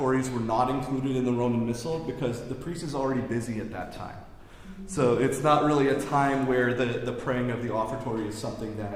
were not included in the Roman Missal because the priest is already busy at that time. So it's not really a time where the praying of the offertory is something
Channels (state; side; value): identical; both; correlation 1.00